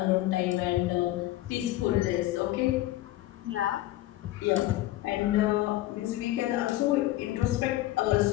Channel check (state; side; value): quieter; right; 15.9 dB